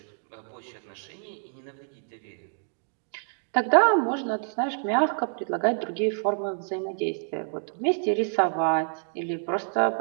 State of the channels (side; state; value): left; silent; digital silence